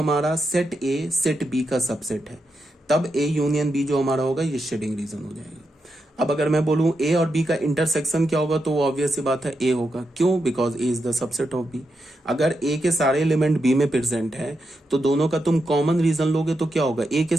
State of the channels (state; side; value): normal; both; correlation 0.85